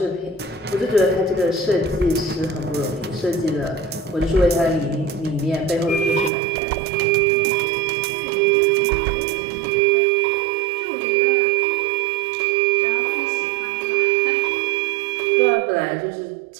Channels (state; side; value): drops out; left; at 6.3 s